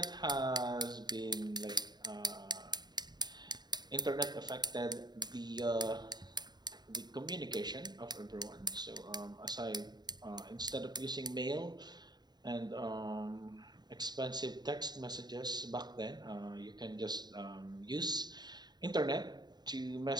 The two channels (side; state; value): left; late; 0.20 ms